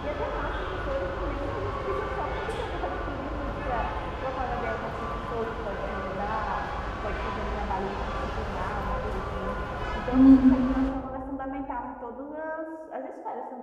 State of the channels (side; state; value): both; identical; correlation 1.00